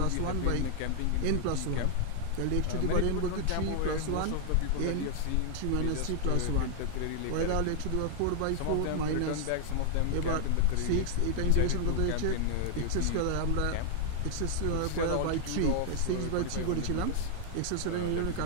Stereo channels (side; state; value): both; different; correlation 0.00